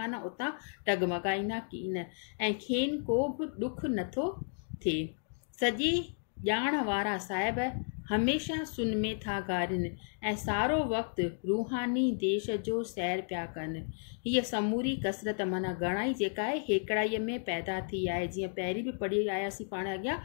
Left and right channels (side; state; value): right; silent; digital silence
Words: उतां टगमगाईंदा कीन ऐं खेनि को बि ॾुख नथो थिए। सॼी ॼाण वारा साहिब हमेशह सुन में था गारिन ऐं सारो वक़्तु रूहानी देश जो सैर पिया कनि। हीअ समूरी कसरत माना घणाई जेका आहे हेकड़ाईअ में पैदा थी आहे। जीअं पहिरीं बि पढ़ी आयासीं पाण अॻियां